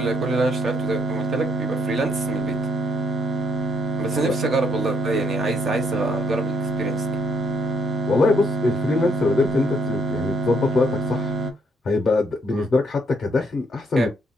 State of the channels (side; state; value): both; normal; correlation 0.71